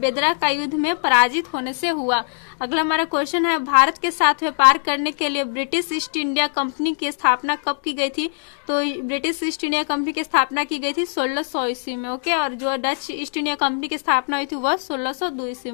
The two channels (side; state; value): right; silent; digital silence